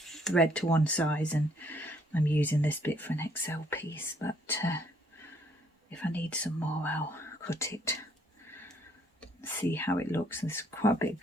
thread to one size, and I'm using this bit for an XL piece, but if I need some more I'll cut it, see how it looks. There's quite a bit of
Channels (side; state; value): both; normal; correlation 0.66